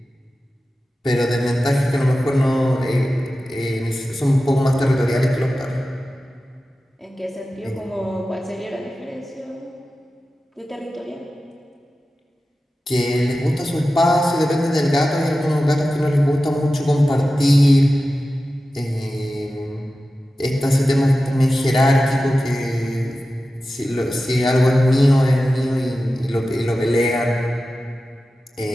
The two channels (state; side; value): normal; both; correlation 0.94